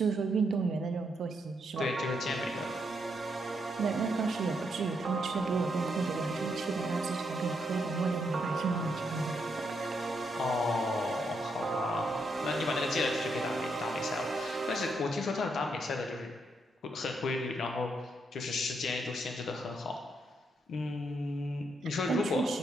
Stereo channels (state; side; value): normal; both; correlation 0.78